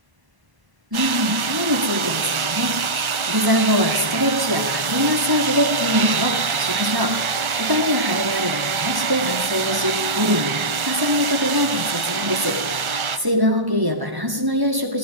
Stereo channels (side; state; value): left; late; 1.1 ms